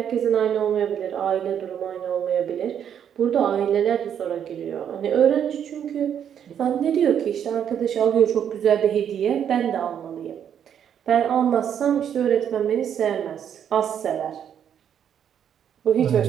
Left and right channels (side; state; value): left; quieter; 8.9 dB